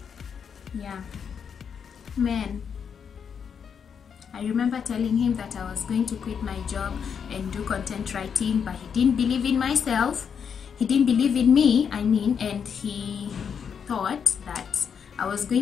Yeah, man. I remember telling him that I was going to quit my job and do content writing, but he didn't believe in myself. He didn't believe in me, I mean, and he thought that I was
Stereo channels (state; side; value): quieter; right; 7.0 dB